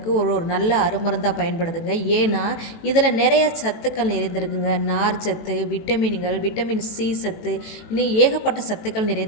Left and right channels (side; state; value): right; late; 18 ms